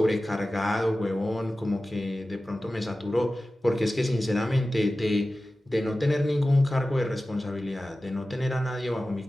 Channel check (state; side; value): normal; both; correlation 0.95